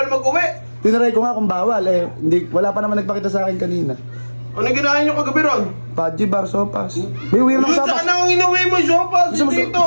mag-uwi. Tinaray ko nga kung bawal. Eh, wala pa naman nagpakita sa akin kanina. Ano ginahin nyo kagabi ron? Paji bar sopas. May weird ng Yun, sopas. saan ang inuwi mo, sopas? Dito.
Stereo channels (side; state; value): both; inverted; correlation -1.00